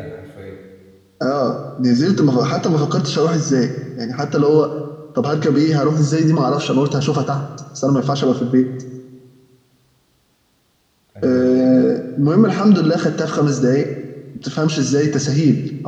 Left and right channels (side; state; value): both; identical; correlation 1.00